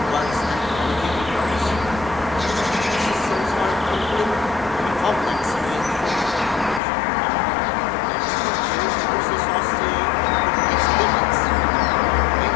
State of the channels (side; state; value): right; drops out; at 6.8 s